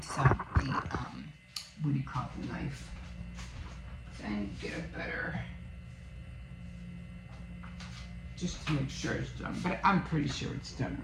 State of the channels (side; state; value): both; identical; correlation 1.00